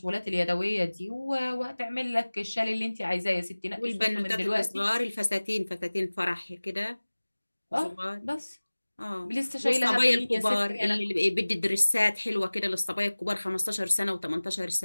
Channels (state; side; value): inverted; both; correlation -1.00